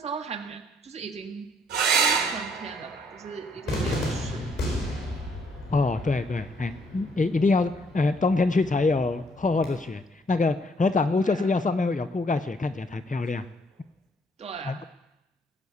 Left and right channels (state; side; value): normal; both; correlation 0.68